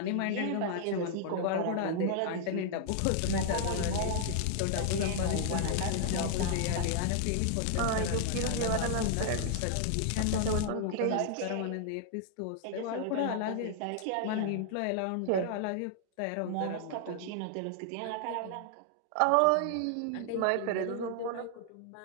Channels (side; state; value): both; different; correlation 0.00